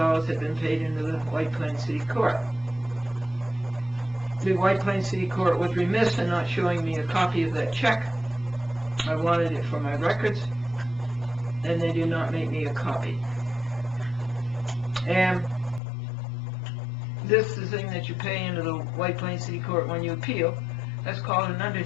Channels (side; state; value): right; drops out; at 15.8 s